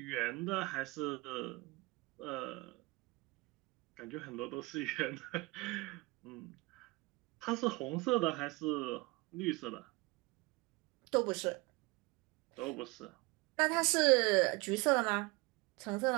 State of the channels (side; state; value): left; quieter; 23.8 dB